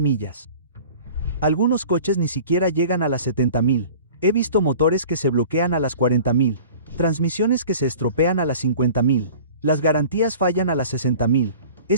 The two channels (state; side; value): inverted; both; correlation -0.43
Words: Algunos coches ni siquiera llegan a las 70.000. He visto motores que se bloquean a las 40.000. Transmisiones que se estropean a las 50.000. Las garantías fallan a las 60.000.